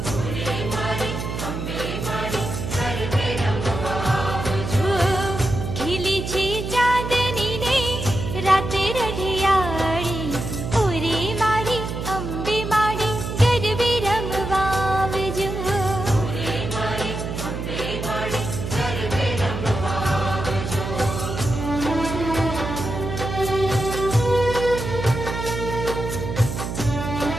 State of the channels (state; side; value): noise; right; hum, 5 dB below the sound